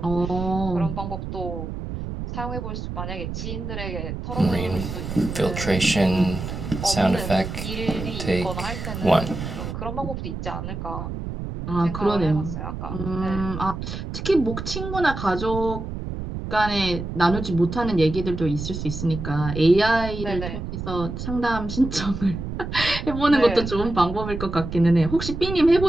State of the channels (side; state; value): right; noise; rumble, 6 dB below the sound